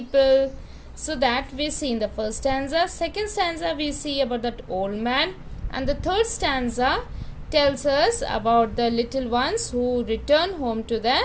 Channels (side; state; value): both; identical; correlation 1.00